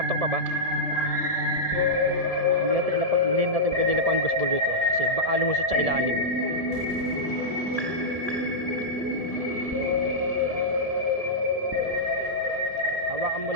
pa ba? Hindi natin pwede lapang ghost ball dito kasi baka lumusot sa ilalim. Hawakan mo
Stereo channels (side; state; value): left; late; 1.7 ms